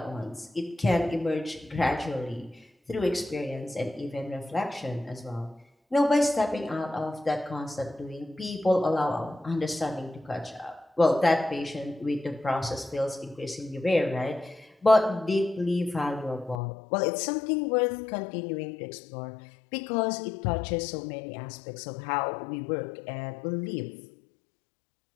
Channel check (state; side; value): drops out; right; at 16.6 s